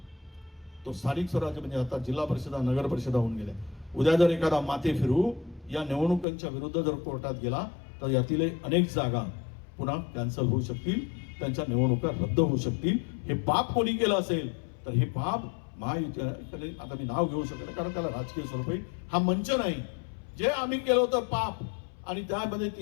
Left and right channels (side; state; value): right; drops out; at 6.2 s